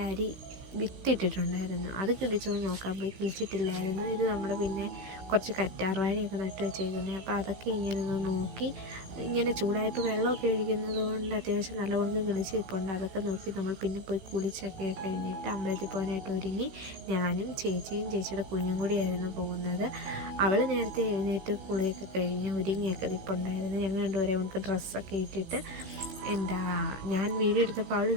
അരി വിത്തിട്ടിട്ടുണ്ടായിരുന്നു. അത് കിളിച്ചോന്ന് നോക്കാൻ പോയി, കിളിച്ചിട്ടില്ലായിരുന്നു. ഇത് നമ്മൾ പിന്നെ കുറച്ച് കറ്റാർവാഴയൊക്കെ നട്ട് വെച്ചേക്കുന്നത്. അപ്പോൾ അതൊക്കെ ഇങ്ങനെ ഒന്ന് നോക്കി, ഇങ്ങനെ ചൂടായപ്പോൾ വെള്ളമൊക്കെ ഒഴിക്കുന്നത് കൊണ്ട് അത്യാവശ്യം നല്ലവണ്ണം കിളിച്ചിട്ടുണ്ട്. അതൊക്കെ നോക്കി നമ്മൾ പിന്നെ പോയി കുളിച്ചൊക്കെ കഴിഞ്ഞിട്ട് അമ്പലത്തിൽ പോകാനായിട്ട് ഒരുങ്ങി. ഞാനും ചേച്ചിയും ചേച്ചിയുടെ കുഞ്ഞും കൂടിയായിരുന്നു പോകുന്നത്. അവൾ നേരത്തെ എഴുന്നേറ്റ് കുളിയൊക്കെ കഴിഞ്ഞ് ഒരുങ്ങിയൊക്കെ നിൽപ്പുണ്ടായിരുന്നു. ഞങ്ങൾ രണ്ടുപേരെ നമുക്ക് ഡ്രസ്സൊക്കെ ഇട്ടിട്ട് ഞാൻ വീഡിയോ എടുത്തപ്പോൾ അവൾ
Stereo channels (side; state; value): left; late; 16 ms